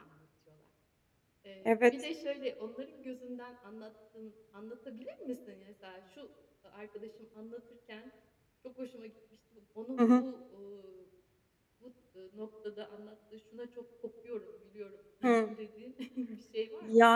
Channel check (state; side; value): identical; both; correlation 1.00